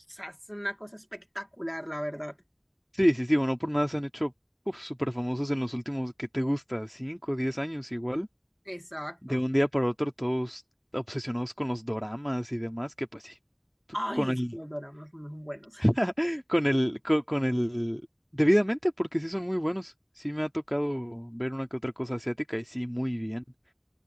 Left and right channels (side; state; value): both; identical; correlation 1.00